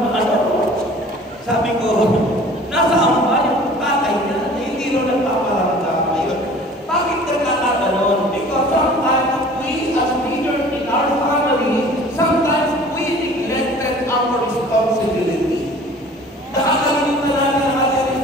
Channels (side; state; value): both; normal; correlation 0.47